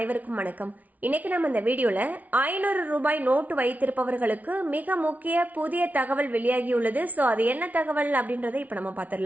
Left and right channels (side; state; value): left; late; 0.073 ms